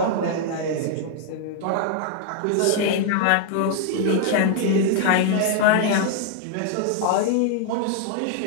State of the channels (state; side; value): different; both; correlation 0.00